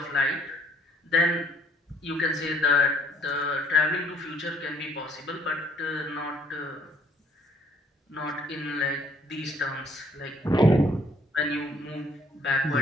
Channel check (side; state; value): both; normal; correlation 0.62